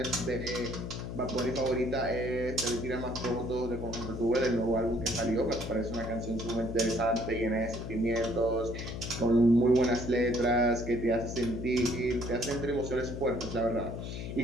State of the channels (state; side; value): noise; left; hum, 6 dB below the sound